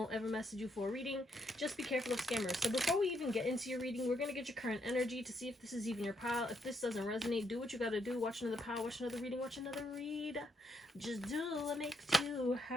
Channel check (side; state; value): both; normal; correlation 0.75